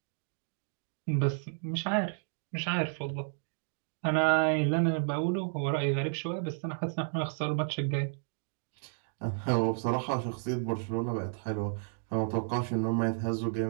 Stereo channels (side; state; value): left; silent; digital silence